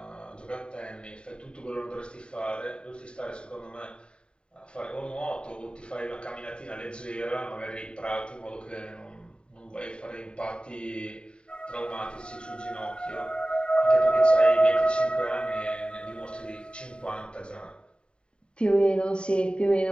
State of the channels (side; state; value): right; late; 0.051 ms